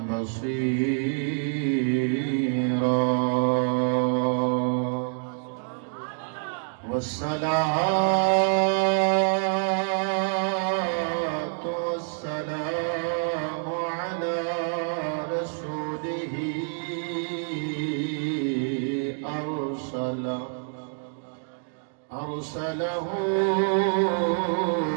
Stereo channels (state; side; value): silent; left; 60 dB below the other